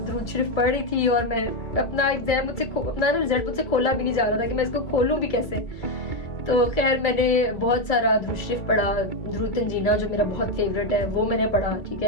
शरीफ पढ़ रही थी और मैं अपना एग्जाम अपना रिजल्ट मुझसे खोला भी नहीं जा रहा था कि मैं इसको खोलूं भी कैसे। तो खैर मैंने बहुत सारा दुरूद शरीफ पढ़ा, दुरूद तंजीना जो मेरा बहुत फेवरेट है वो मैंने पढ़ा, ठीक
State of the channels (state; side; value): late; right; 2.3 ms